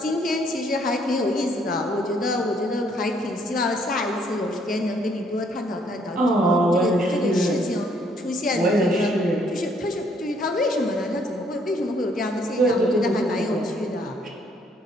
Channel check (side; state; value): both; normal; correlation 0.66